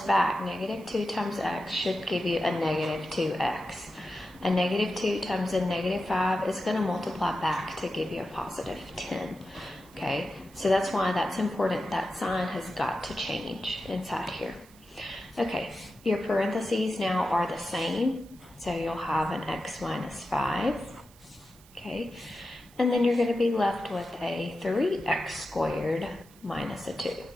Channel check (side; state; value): right; noise; hiss, 25 dB below the sound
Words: back, negative 2 times x should give you a negative 2x. A negative 2 times a negative 5 is going to multiply back to give you a positive 10. Okay, so that's why that's important. That sign has got to change inside here. Okay, your parentheses now are the same. So you'll have an x minus 5. Okay, and then you're going to be left with a 3x squared minus a 2.